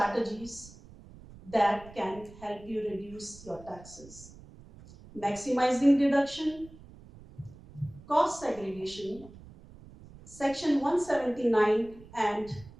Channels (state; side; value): noise; right; rumble, 20 dB below the sound